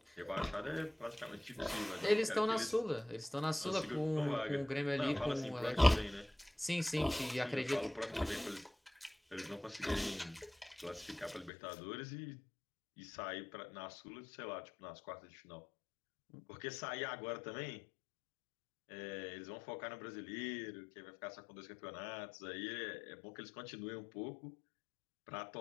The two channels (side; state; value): right; drops out; at 11.5 s